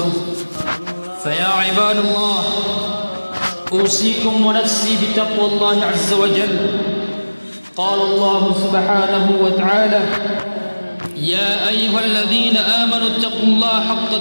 فيا عباد الله أوصيكم ونفسي بتقوى الله عز وجل قال الله سبحانه وتعالى يا أيها الذين آمنوا اتقوا الله حق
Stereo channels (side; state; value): both; inverted; correlation -1.00